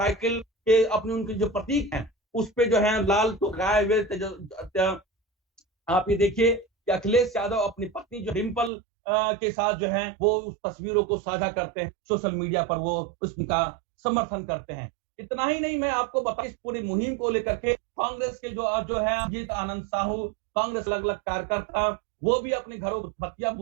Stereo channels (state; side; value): drops out; left; at 8.7 s